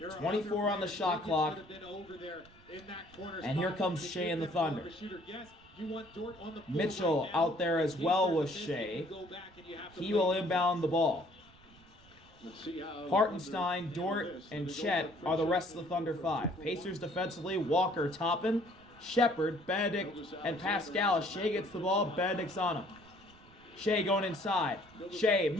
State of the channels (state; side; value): noise; right; rumble, 26 dB below the sound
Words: 24 on the shot clock. And here comes Shai and the Thunder. Mitchell out there as well with Shai. He will inbound the ball. Hartenstein, Dort, and Chet are the rest of the Thunder 5. Pacers defensively, Walker, Toppin, Shepard, Benedict, and Pascal. Shai gets the ball, Benedict's on him. Shai going inside. Shai,